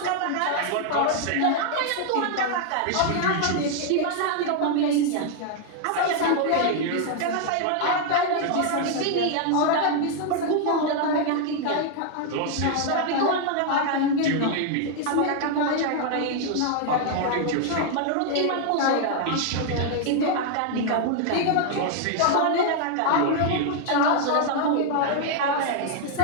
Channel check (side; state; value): both; different; correlation 0.00